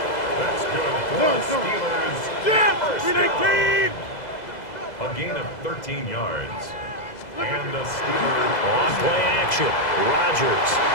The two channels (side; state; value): right; late; 2.0 ms